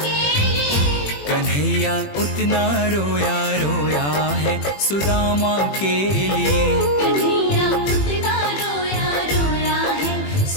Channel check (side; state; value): right; late; 21 ms